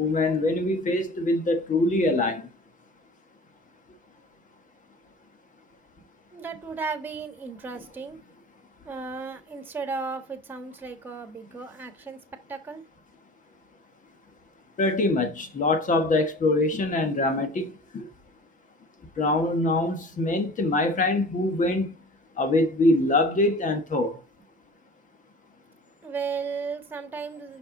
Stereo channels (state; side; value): normal; both; correlation 0.42